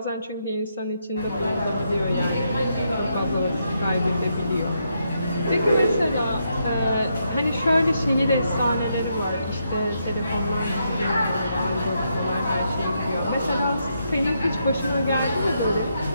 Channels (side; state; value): both; inverted; correlation -0.80